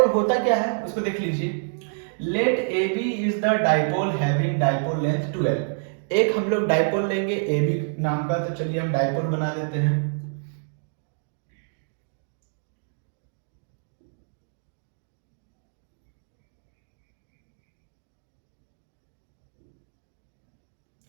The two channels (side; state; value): left; silent; digital silence